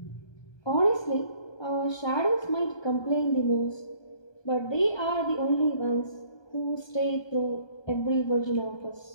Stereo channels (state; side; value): late; right; 1.2 ms